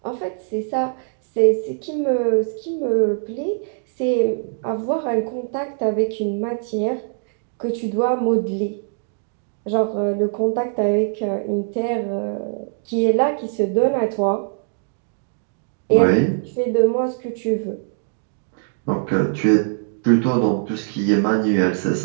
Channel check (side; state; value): left; silent; digital silence